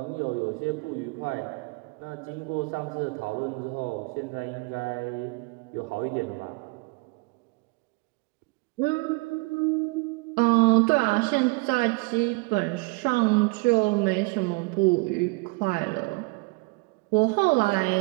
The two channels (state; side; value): quieter; left; 28.6 dB